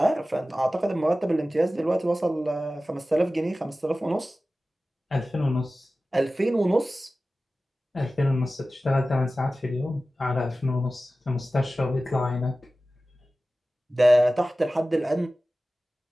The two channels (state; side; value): normal; both; correlation 0.96